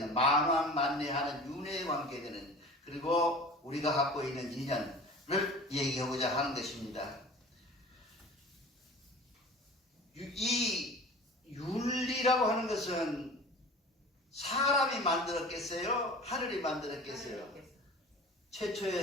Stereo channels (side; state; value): both; normal; correlation 0.40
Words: 만왕만내하는 윤회에 관계되는, 그리고 우리가 갖고 있는 인연을 얘기하고자 하는 것입니다. 이 윤리라고 하는 것은 사람이 만들었겠어요? 하늘이 만들었겠어요?